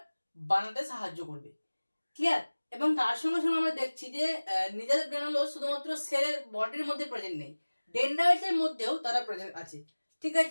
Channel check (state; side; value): inverted; both; correlation -1.00